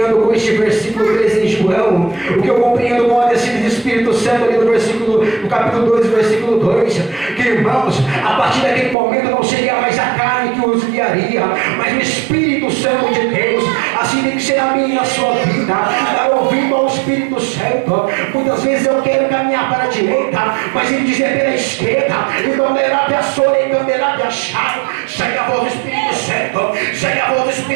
com este versículo 13 em João? O que eu compreendo com a descida do Espírito Santo ali no capítulo 2, versículo 2, que, irmãos, a partir daquele momento não seria mais a carne que os guiaria, mas o Espírito Santo de Deus. Assim tem que ser a minha e a sua vida, dar ouvido ao Espírito Santo. Muitas vezes eu quero caminhar para a direita, mas ele diz é pela esquerda. Então lerá a sora e canderá a chave. Segue a voz do Espírito Santo, segue a voz do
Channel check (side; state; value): left; drops out; at 9.0 s